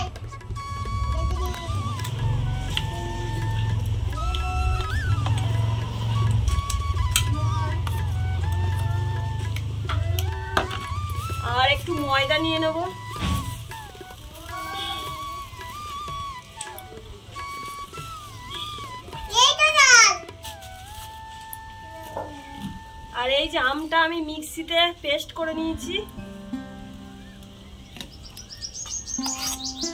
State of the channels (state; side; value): identical; both; correlation 1.00